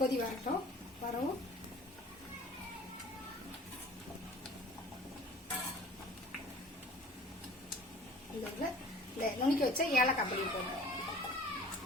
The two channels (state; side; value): normal; both; correlation 0.47